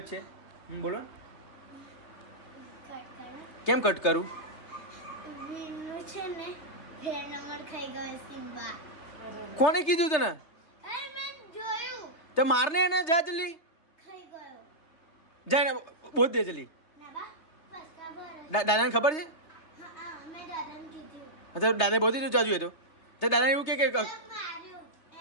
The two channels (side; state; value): right; late; 3.2 ms